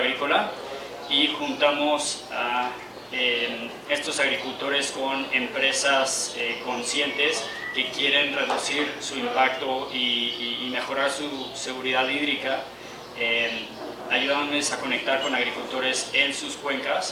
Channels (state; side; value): identical; both; correlation 1.00